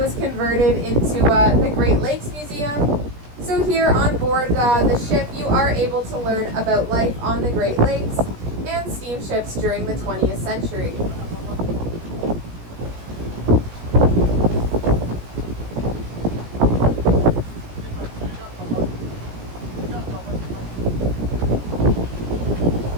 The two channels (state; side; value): late; left; 17 ms